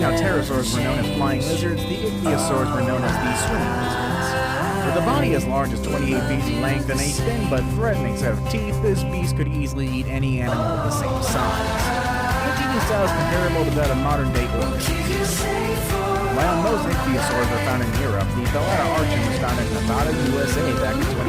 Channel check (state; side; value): identical; both; correlation 1.00